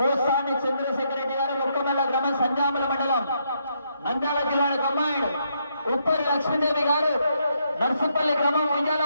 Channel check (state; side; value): inverted; both; correlation -0.76